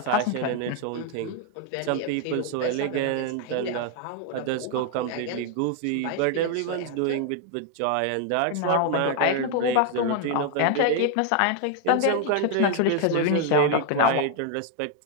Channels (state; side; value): different; both; correlation 0.00